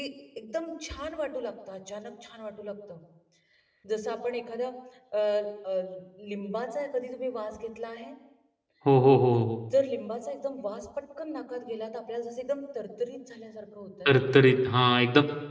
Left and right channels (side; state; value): both; identical; correlation 1.00